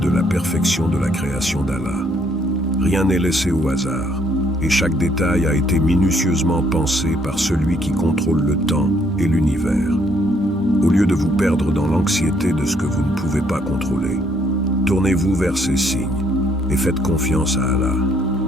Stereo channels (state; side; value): normal; both; correlation 0.68